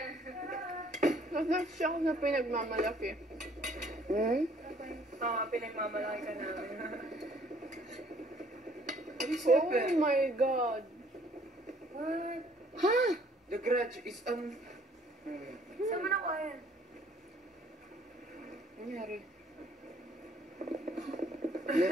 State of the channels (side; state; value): both; normal; correlation 0.60